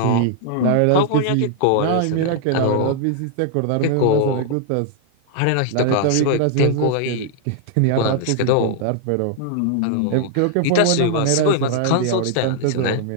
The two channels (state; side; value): different; both; correlation -0.01